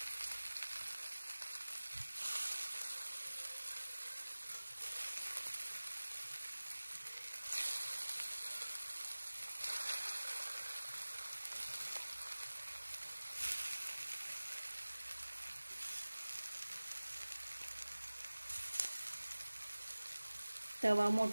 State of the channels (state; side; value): inverted; both; correlation -1.00